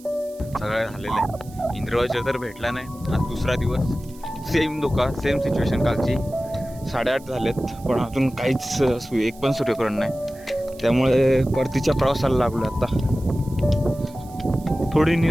सगळं झालेलं आहे. इंद्रवाजा तर भेटला नाही. आज दुसरा दिवस. सेम सिच्युएशन कालची. 8:30 झालेत पण अजून काहीच एक पण सूर्यकिरण नाही. त्यामुळे परतीच्या प्रवासाला लागलो आता. थोडी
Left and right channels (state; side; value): noise; right; hiss, 24 dB below the sound